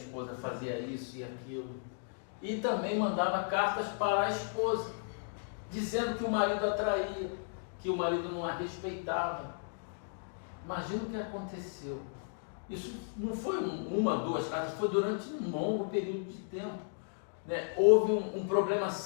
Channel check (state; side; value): silent; right; digital silence